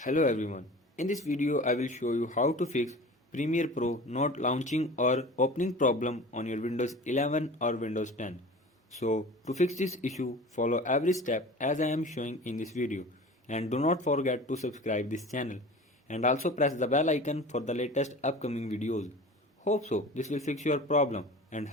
Hello everyone. In this video I will show you how to fix Premiere Pro not launching or opening problem on your Windows 11 or Windows 10. So to fix this issue, follow every step as I am showing in this video, and do not forget to subscribe this channel and also press the bell icon for the latest upcoming videos. Hope so this will fix your problem and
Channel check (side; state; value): both; normal; correlation 0.38